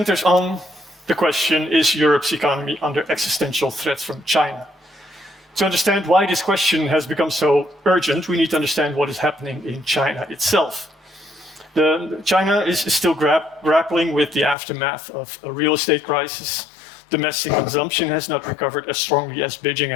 on the question, is Europe's economy under existential threat from China? To understand why this question has become so urgent, we need to understand what is happening in China itself. China is still grappling with the aftermath of a real estate crisis. Domestic consumption has not recovered as strongly as Beijing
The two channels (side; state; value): right; drops out; at 14.6 s